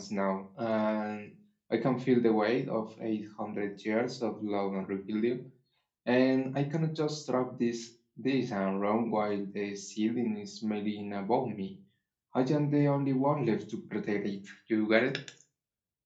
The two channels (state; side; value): identical; both; correlation 1.00